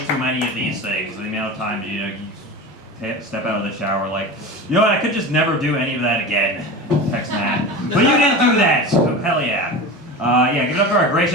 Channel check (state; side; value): normal; both; correlation 0.29